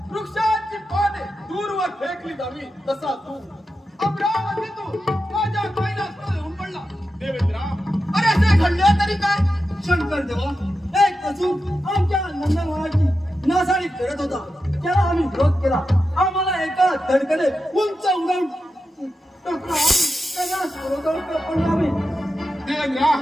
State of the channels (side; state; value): both; normal; correlation 0.90